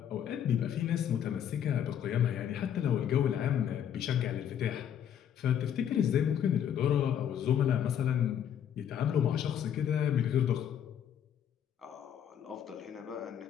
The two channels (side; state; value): right; quieter; 9.4 dB